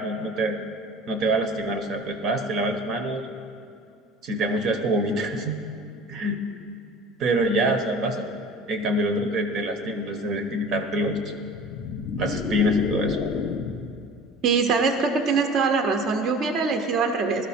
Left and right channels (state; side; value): normal; both; correlation 0.42